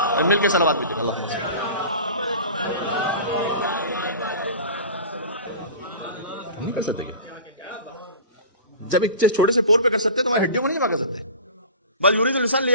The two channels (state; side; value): inverted; both; correlation -0.36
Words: مل کے صلوات بھی اللہ نہیں کر سکتے. جب ایک چھوٹے سے پور پہ کر سکتے تمہاری ہڈیوں کو نہیں جمع کر سکتے. بس یرید الانسان